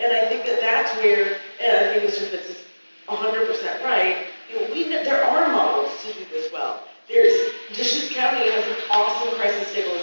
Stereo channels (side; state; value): both; inverted; correlation -1.00